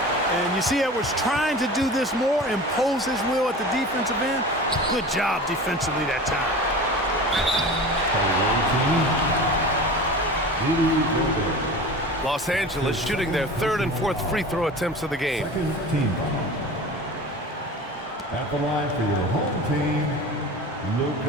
And you see Edwards trying to do this more, impose his will at the defensive end. Good job defensively that time. Los Angeles shooting their 3rd and 4th free throw attempts of the game. Second team foul. At the line for your home team,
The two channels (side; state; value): both; normal; correlation 0.35